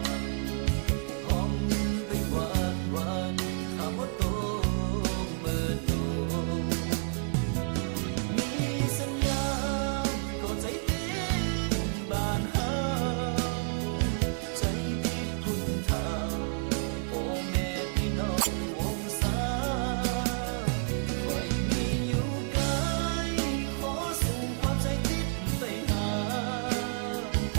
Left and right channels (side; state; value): left; silent; 58 dB below the other